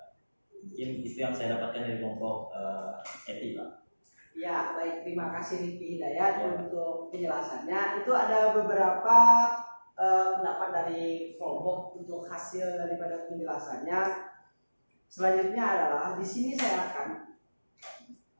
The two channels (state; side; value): inverted; both; correlation -1.00